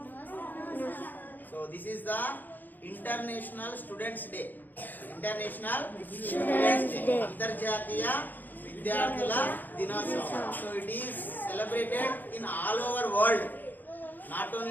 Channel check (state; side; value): late; right; 0.089 ms